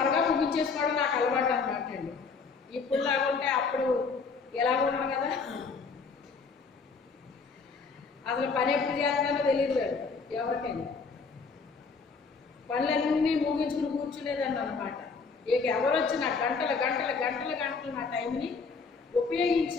ముగించేసుకోవడం నాకు అలవాటు అన్నమాట అండి. ఇప్పుడు లాగుంటే అప్పుడు ఎలాగ ఉన్నాను కదా, అసలు పని ఎప్పుడు చేస్తానో తెలియదు ఎవరికైనా. పనులన్నీ ముగించుకుని కూర్చునేదాన్ని అనమాట. ఇక ఎవరు వచ్చినా గంటలు గంటలు గంటలు గంటలు నా టైంని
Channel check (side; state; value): right; quieter; 4.9 dB